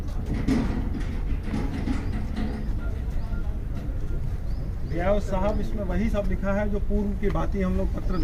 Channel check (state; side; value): identical; both; correlation 1.00